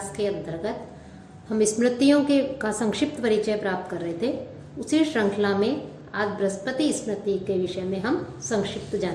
के अंतर्गत हम स्मृतियों का संक्षिप्त परिचय प्राप्त कर रहे थे। उसी श्रृंखला में आज बृहस्पति स्मृति के विषय में हम संक्षिप्त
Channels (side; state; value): both; identical; correlation 1.00